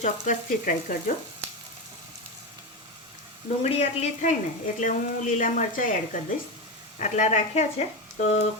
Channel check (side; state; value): both; normal; correlation 0.16